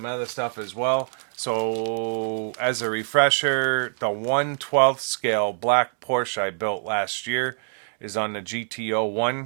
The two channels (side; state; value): left; silent; digital silence